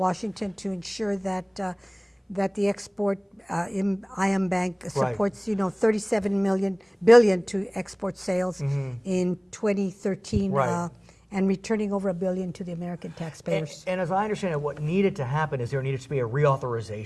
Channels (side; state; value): both; identical; correlation 1.00